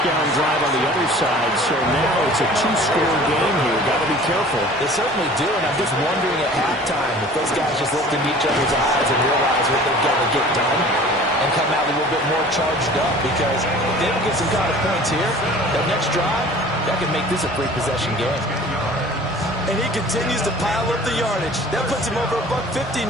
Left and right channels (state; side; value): normal; both; correlation 0.46